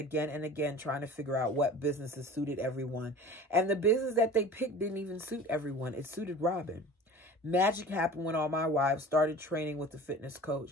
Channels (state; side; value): normal; both; correlation 0.40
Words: and again, trying to figure out what businesses suited everyone. And the business that they picked didn't even suit everyone. It suited Robin. Magic happened when all my wives started training with the fitness